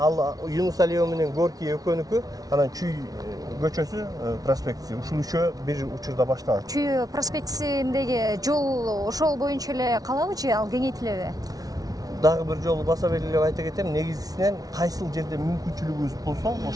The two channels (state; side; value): late; left; 0.18 ms